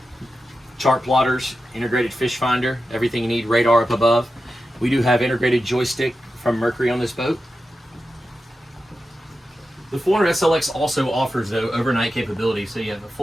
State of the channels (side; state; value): both; normal; correlation 0.91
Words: chart plotters, integrated fish finder, everything you need, radar up above. We do have integrated joystick from Mercury on this boat. The 400 SLX also offers, though, overnight capability, so you have a